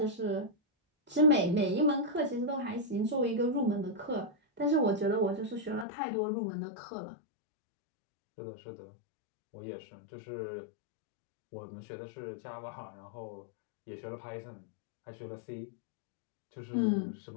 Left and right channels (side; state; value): right; drops out; at 5.9 s